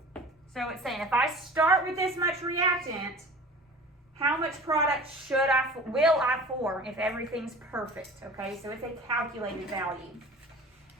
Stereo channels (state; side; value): normal; both; correlation 0.41